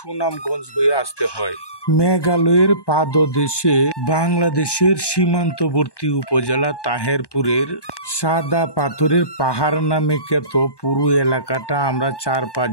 হয়ে আসতে হয়। মেঘালয়ের পাদদেশে বাংলাদেশের সীমান্তবর্তী উপজেলা তাহেরপুরের সাদা পাথরের পাহাড় নামে খ্যাত পুরো এলাকাটা আমরা 4-5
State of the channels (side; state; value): right; late; 1.2 ms